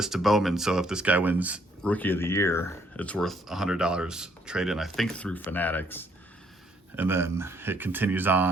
to Bowman, so if this guy wins Rookie of the Year, it's worth $100 trade-in, I think, through Fanatics. And then it continues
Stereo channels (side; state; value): both; normal; correlation 0.67